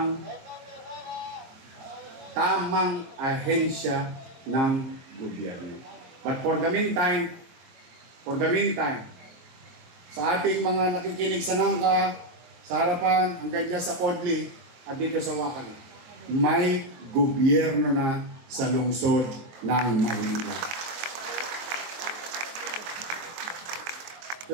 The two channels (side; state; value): left; late; 23 ms